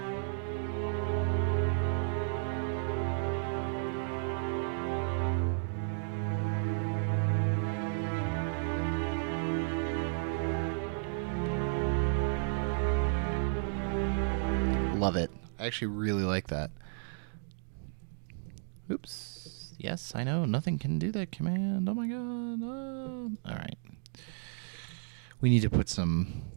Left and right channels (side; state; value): left; silent; digital silence